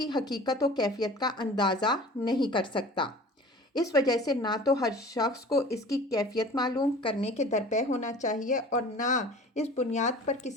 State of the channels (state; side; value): normal; both; correlation 0.42